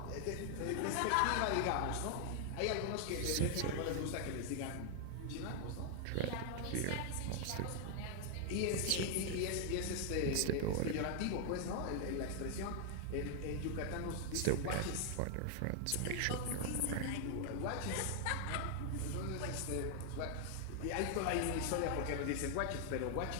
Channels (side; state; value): both; different; correlation 0.00